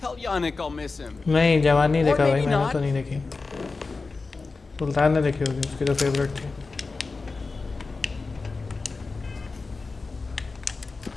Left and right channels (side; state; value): right; quieter; 4.0 dB